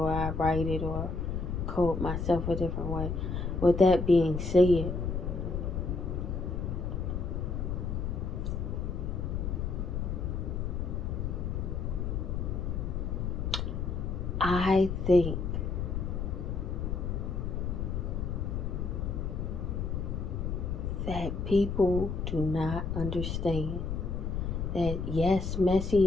I write it or code myself a different way. With that being said, I think that people do not understand that yes,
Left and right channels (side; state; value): left; noise; rumble, 2 dB below the sound